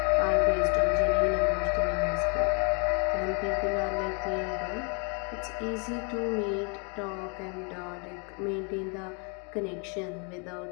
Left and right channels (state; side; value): quieter; right; 36.4 dB